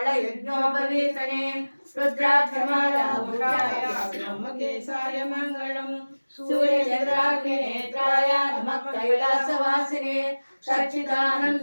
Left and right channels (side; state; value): both; inverted; correlation -1.00